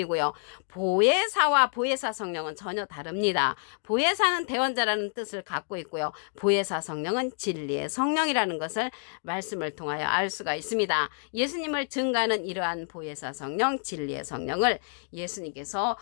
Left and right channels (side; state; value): right; silent; 59 dB below the other